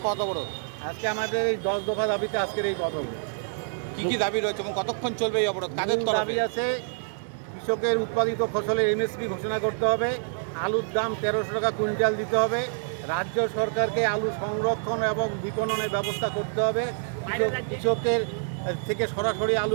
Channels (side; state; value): left; silent; digital silence